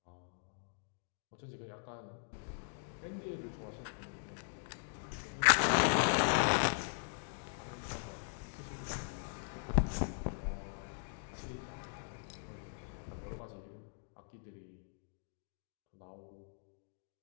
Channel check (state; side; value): silent; right; digital silence